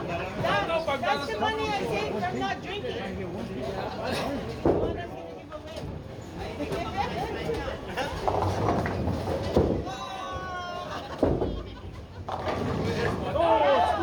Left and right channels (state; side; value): identical; both; correlation 1.00